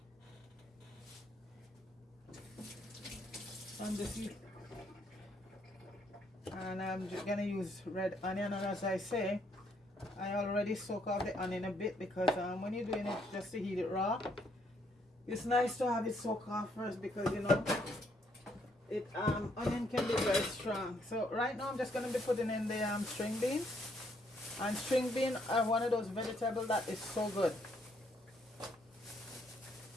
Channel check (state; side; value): normal; both; correlation 0.71